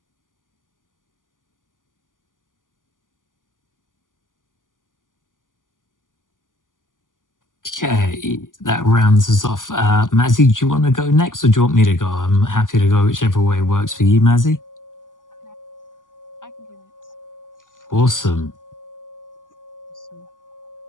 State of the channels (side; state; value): right; late; 0.88 ms